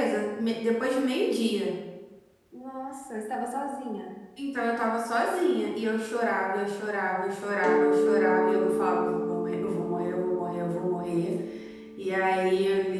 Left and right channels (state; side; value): identical; both; correlation 1.00